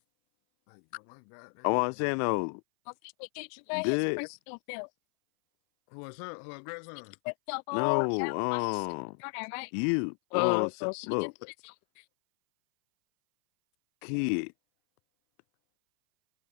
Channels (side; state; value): right; silent; 56 dB below the other